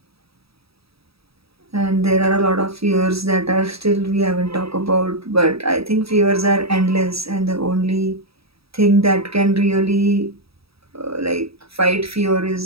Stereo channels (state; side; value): late; left; 0.77 ms